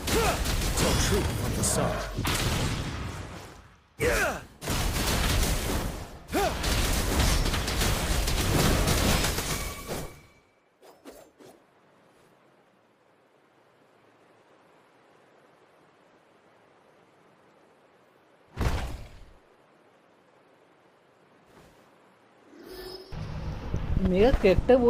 Tell truth from the sun. Yeah. मेरा character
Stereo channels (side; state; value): both; identical; correlation 1.00